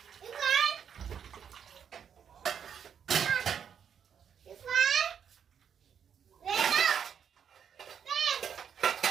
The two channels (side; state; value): left; quieter; 7.9 dB